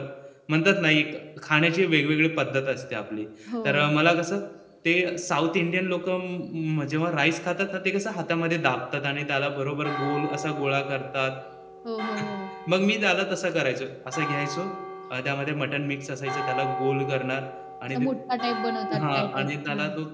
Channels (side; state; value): both; identical; correlation 1.00